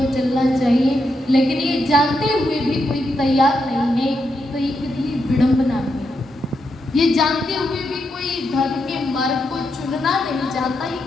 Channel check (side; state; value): both; normal; correlation 0.83